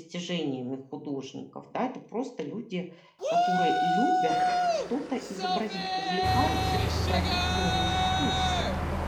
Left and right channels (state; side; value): identical; both; correlation 1.00